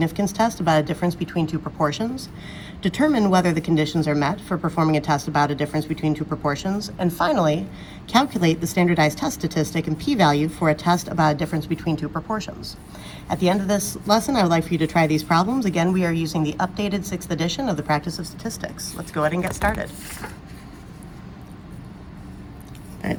test about a difference between two proportions, determine whether the conditions are met for performing a test about a difference between two proportions, and finally, calculate the standardized test statistic and p-value for a test about a difference between two proportions. At the end of this lesson, I would like for you to try these problems. Again, we are using the updated 6th edition of the Practice of Statistics. Let's go ahead and get started. All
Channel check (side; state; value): both; identical; correlation 1.00